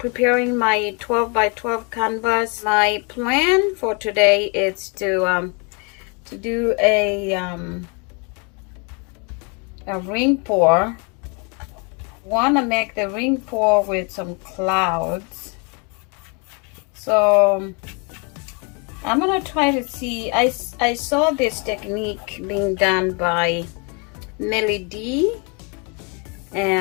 my 12 by 12 canvas. My plan for today is to do a ring pour. Want to make the ring pour with some clouds, so I'm gonna try to see. I saw this technique being done by MelyD,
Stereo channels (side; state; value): right; quieter; 34.1 dB